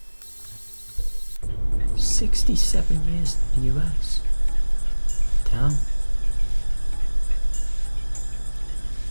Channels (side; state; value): both; inverted; correlation -1.00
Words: 67 years in the US. Damn.